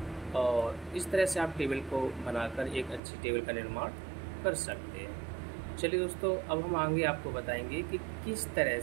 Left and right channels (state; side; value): drops out; left; at 3.0 s